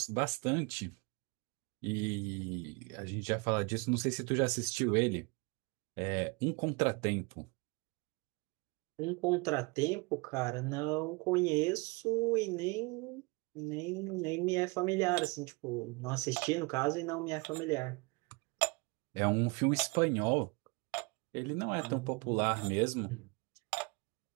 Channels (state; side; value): quieter; left; 28.5 dB